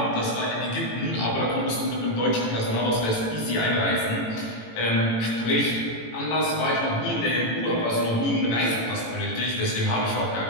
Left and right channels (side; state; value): right; late; 18 ms